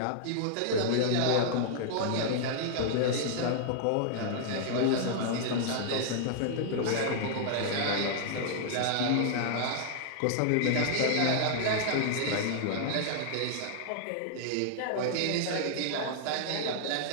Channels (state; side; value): different; both; correlation -0.01